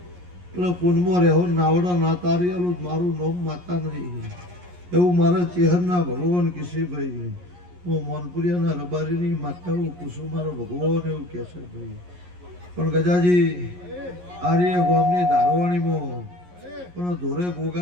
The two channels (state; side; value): late; left; 11 ms